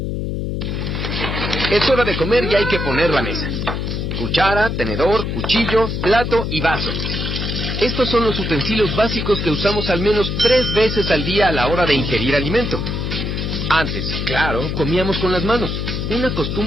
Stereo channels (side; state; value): left; noise; hum, 2 dB below the sound